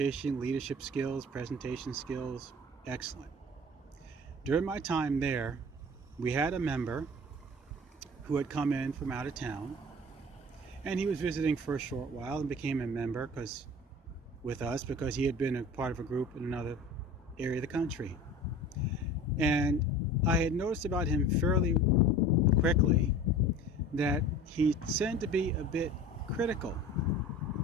leadership skills, presentation skills, excellent. During my time there, we had a member who had come in from out of town, and he was visiting for a short while and became a member with us because he had been a part of a group in another area of the country. And I had noticed about him fairly quickly that he tended to be a bit critical.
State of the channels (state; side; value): normal; both; correlation 0.40